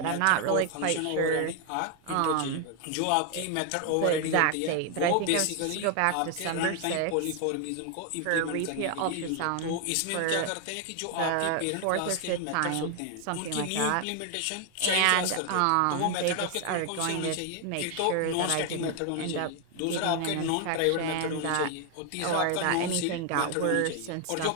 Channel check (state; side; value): different; both; correlation 0.00